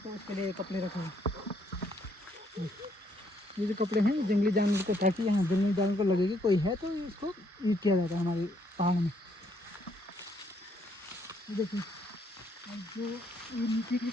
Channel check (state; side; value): normal; both; correlation 0.70